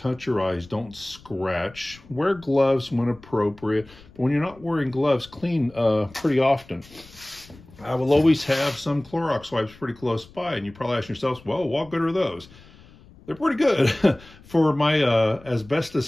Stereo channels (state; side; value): noise; left; rumble, 23 dB below the sound